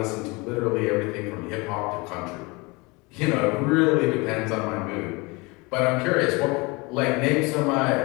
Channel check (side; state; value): right; quieter; 26.0 dB